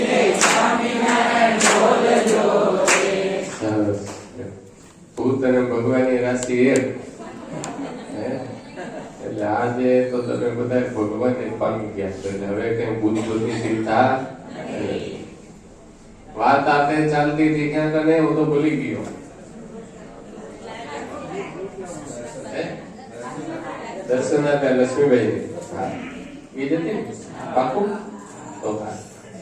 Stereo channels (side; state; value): both; identical; correlation 1.00